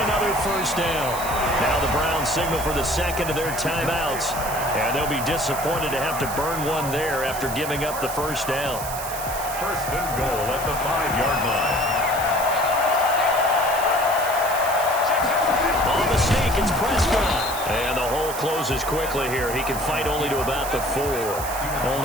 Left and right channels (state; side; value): noise; right; hiss, 9 dB below the sound